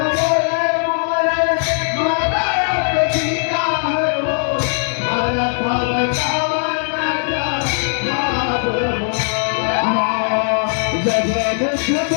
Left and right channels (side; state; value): right; silent; digital silence